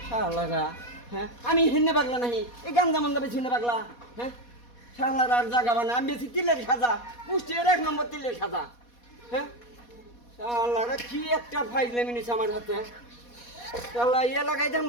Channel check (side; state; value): right; late; 4.2 ms